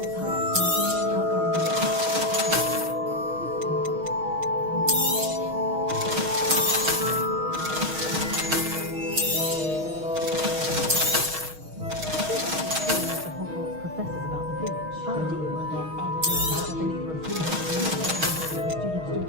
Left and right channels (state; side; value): late; left; 6.3 ms